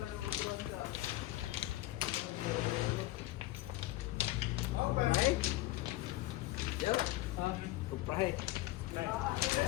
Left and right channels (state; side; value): quieter; right; 16.9 dB